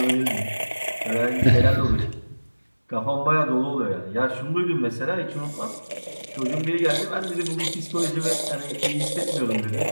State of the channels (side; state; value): both; inverted; correlation -1.00